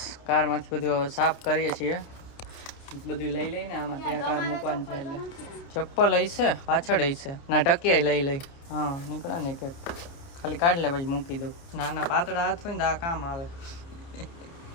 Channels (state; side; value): late; right; 30 ms